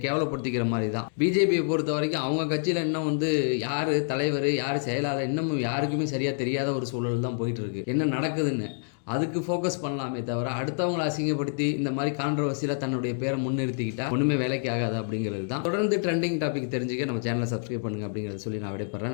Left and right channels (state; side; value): silent; right; digital silence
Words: கேவலப்படுத்திக்கிற மாதிரி தான். பிஜேபியை பொறுத்த வரைக்கும் அவங்க கட்சியில் இன்னும் வந்து யார் தலைவர் யார் செயலாளர் இன்னமும் யாருக்குமே சரியாக தெரியாத ஒரு சூழல் தான் போயிட்டுருக்கு. என்ன நடக்குதுன்னு அதுக்கு ஃபோக்கஸ் பண்ணலாமே தவிர, அடுத்தவங்களை அசிங்கப்படுத்தி இந்த மாதிரி கான்ட்ரவர்சியில் தன்னுடைய பேரை முன்னிறுத்திக்கிட்டா ஒன்றுமே வேலைக்கு ஆகாது அப்படிங்கிறது தான். தொடர்ந்து ட்ரெண்டிங் டாபிக் தெரிஞ்சுக்க நம்ம சேனலை சப்ஸ்கிரைப் பண்ணுங்கள் அப்படிங்கிறத சொல்லி நான்